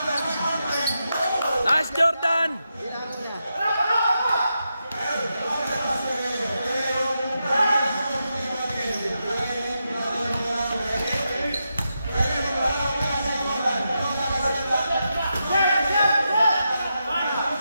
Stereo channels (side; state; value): both; inverted; correlation -0.86